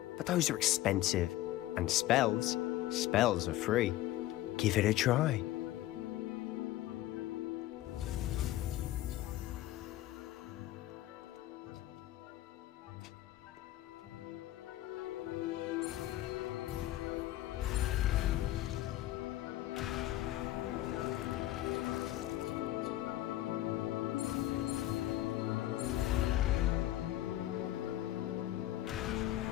but those are expensive. And spells are free. Give it a try.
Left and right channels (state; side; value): quieter; right; 14.7 dB